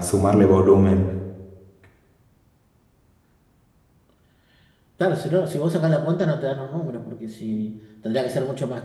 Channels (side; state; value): both; identical; correlation 1.00